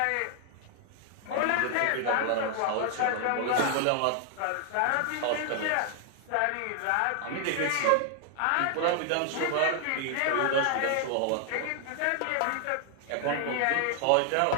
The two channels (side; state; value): both; different; correlation 0.00